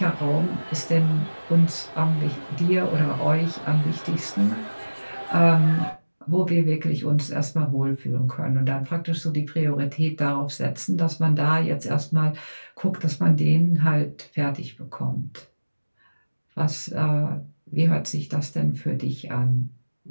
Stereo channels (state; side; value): inverted; both; correlation -1.00